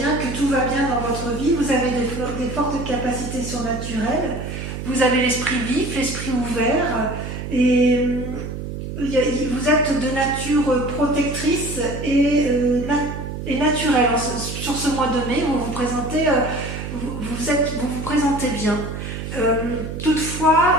que tout va bien dans votre vie, vous avez des fortes capacités surnaturelles, vous avez l'esprit vif, l'esprit ouvert, et vous êtes de nature protectrice et naturelle. Sur ce mois de mai, vous vous présentez bien. Toutefois,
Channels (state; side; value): noise; right; hum, 7 dB below the sound